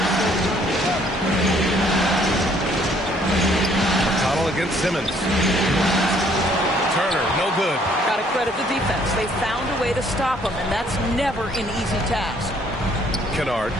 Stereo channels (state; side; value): normal; both; correlation 0.63